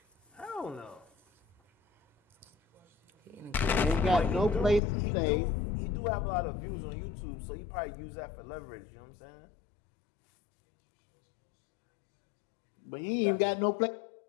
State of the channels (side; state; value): right; drops out; at 4.8 s